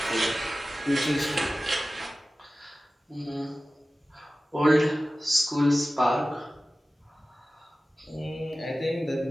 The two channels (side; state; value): both; normal; correlation 0.96